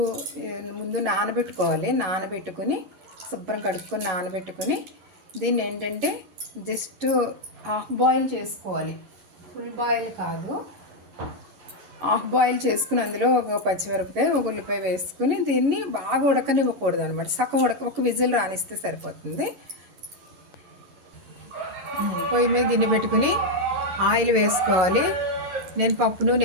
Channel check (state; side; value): late; left; 11 ms